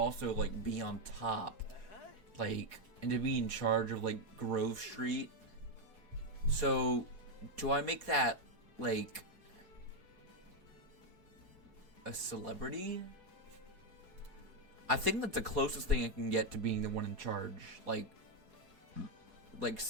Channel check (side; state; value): right; late; 4.8 ms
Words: like, be on top. Like, and to be in charge of, like, Grove Street. So, do I make that, like, a celebrity? I think that's the closest thing I can get to being the one in charge. Like